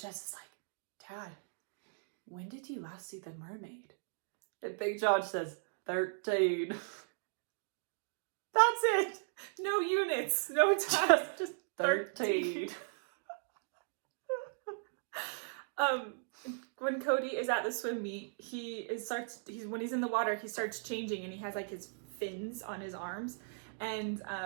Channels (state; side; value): silent; left; digital silence